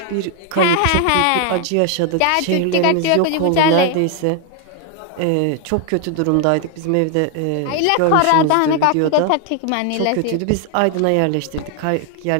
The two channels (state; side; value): different; both; correlation 0.00